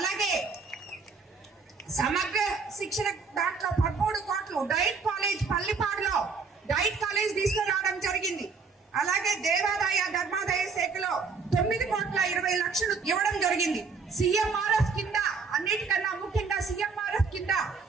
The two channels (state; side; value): quieter; left; 5.0 dB